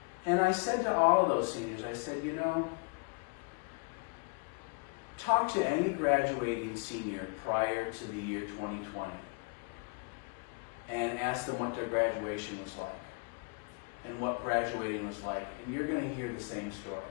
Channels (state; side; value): quieter; right; 31.6 dB